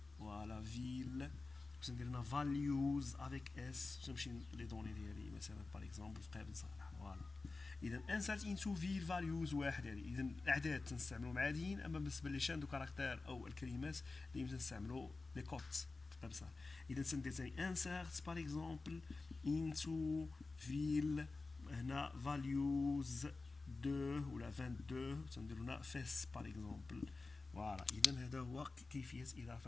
voilà ville. ندير values avec s باش نمشي لي دوني ديالي مثلا باغ اكزومبل في قابل صالح. فوالا اذا insert into field values واحد هذه. اذا الاعداد تنستعملوا عاديين، اما بالنسبه لي شان دو كاركتير او الكلمات اللي تنستعملوا لي كوت في قابل صالح. اذا تندير ثاني insert باغ اكزومبل into field هنا values 2 ولا 22 تنديروا هنا fes باغ اكزومبل. فوالا اذا هذا هو كيفيه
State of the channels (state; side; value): quieter; right; 3.6 dB